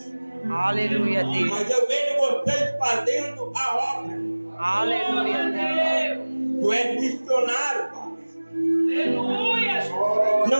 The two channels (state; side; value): inverted; both; correlation -1.00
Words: Aleluia, Deus. Mas eu vejo vocês fazendo a obra. Aleluia, Deus. Tu és missionário, Pai. Aleluia, Jesus.